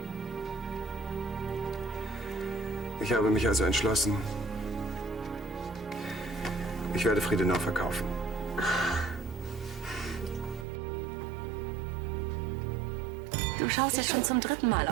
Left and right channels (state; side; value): drops out; left; at 10.7 s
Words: Ich habe mich also entschlossen, Ich werde Friedenau verkaufen. Du schaust jetzt schon zum 3. Mal